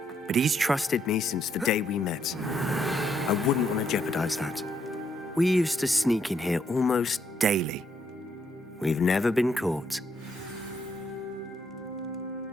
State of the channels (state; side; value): normal; both; correlation 0.74